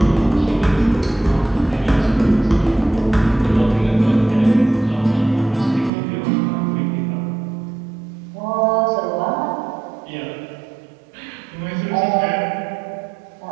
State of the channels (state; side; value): drops out; left; at 5.9 s